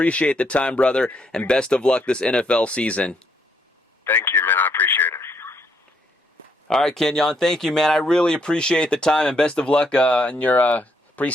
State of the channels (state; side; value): normal; both; correlation 0.72